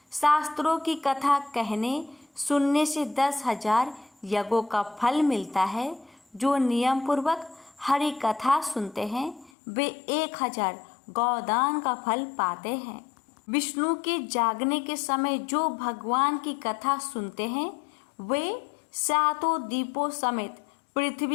शास्त्रों की कथा कहने सुनने से 10,000 यज्ञों का फल मिलता है। जो नियम पूर्वक हरि कथा सुनते हैं वे 1000 गौदान का फल पाते हैं। विष्णु के जागने के समय जो भगवान की कथा सुनते हैं वे 7 दीपों समेत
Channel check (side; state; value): right; drops out; at 9.5 s